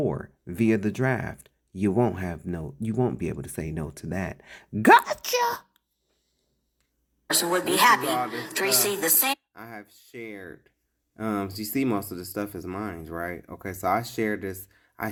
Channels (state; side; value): identical; both; correlation 1.00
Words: via the draft. You won't be able to say no to that. Gotcha! Person would be happy to receive the same. I have shared. You see, most of the stuff is mine, right? Okay, so I shared this